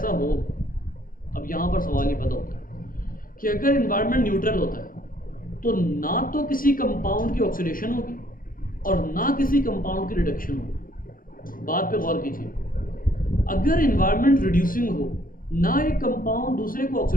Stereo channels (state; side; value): late; right; 0.40 ms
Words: हो, अब यहाँ पर सवाल ये पैदा होता है कि अगर एनवायरनमेंट न्यूट्रल होता है तो ना तो किसी कंपाउंड की ऑक्सीडेशन होगी और ना किसी कंपाउंड की रिडक्शन हो। बात पे गौर कीजिए, अगर इन्वायरमेंट रिड्यूसिंग हो, ना एक कंपाउंड दूसरे को